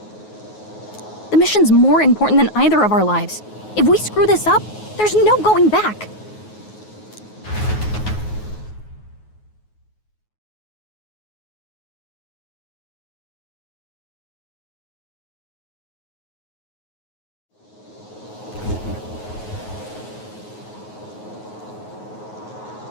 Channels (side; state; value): right; late; 9.4 ms